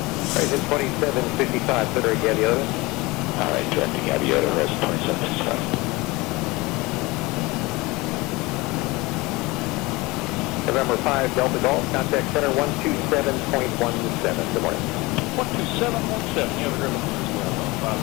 Horizon 2755, Center, Gaviota. All right, directing Gaviota, Horizon 2765. November 5, Delta Golf, contact center 127.17. Good morning. 12717, you have a good one as well, 5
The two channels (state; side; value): quieter; right; 22.7 dB